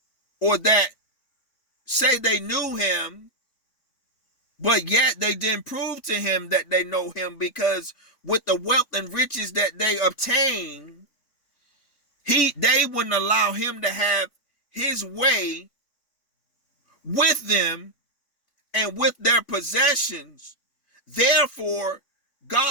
or that say they knew him, but yet they didn't prove to him that they know him, because with the wealth and riches that they obtain, they wouldn't allow him to have his way with them and with their possessions. Therefore,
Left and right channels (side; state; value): right; late; 3.5 ms